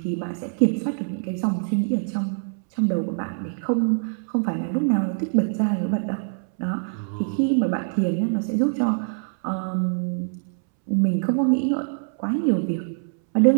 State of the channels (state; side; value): silent; left; 63 dB below the other